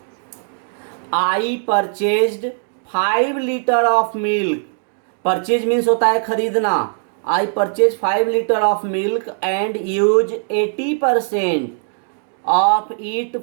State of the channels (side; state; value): left; silent; digital silence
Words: I purchased 5 litre of milk. Purchase means होता है खरीदना। I purchase 5 litre of milk and use 80% of it